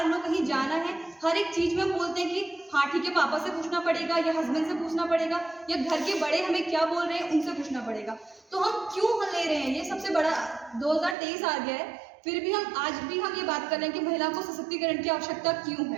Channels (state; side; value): drops out; left; at 11.2 s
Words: लो, कहीं जाना है, हर एक चीज़ में हम बोलते हैं कि हाँ ठीक है, पापा से पूछना पड़ेगा या हस्बैंड से पूछना पड़ेगा या घर के बड़े हमें क्या बोल रहे हैं उनसे पूछना पड़ेगा। तो हम क्यों ले रहे हैं, ये सबसे बड़ा 2023 आ गया है, फिर भी हम आज भी हम ये बात कर रहे हैं कि महिला को सशक्तिकरण की आवश्यकता क्यों